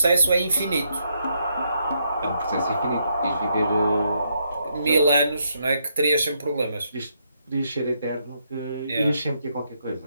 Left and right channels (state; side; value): inverted; both; correlation -0.78